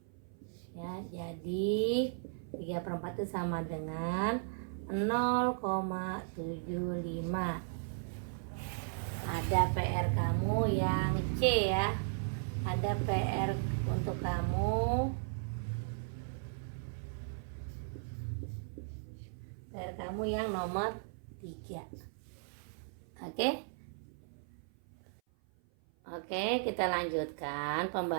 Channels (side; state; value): left; silent; 54 dB below the other